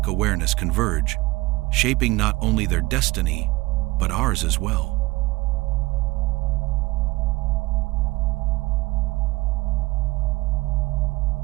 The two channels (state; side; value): quieter; left; 21.0 dB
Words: awareness converge, shaping not only their destiny, but ours as well.